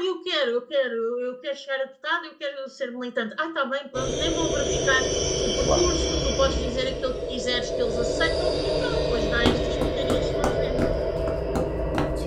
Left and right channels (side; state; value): both; identical; correlation 1.00